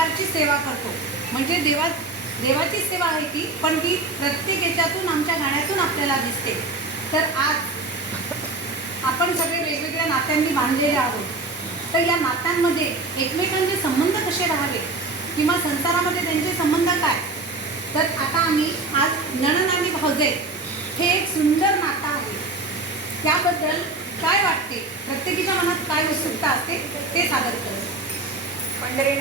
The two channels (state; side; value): quieter; left; 3.2 dB